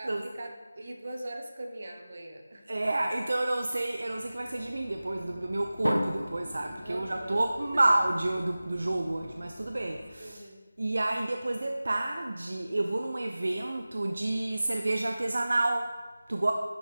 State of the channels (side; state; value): both; inverted; correlation -0.98